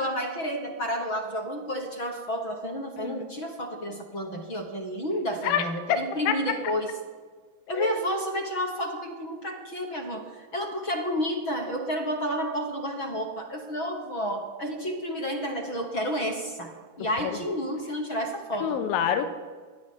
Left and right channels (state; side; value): late; right; 6.1 ms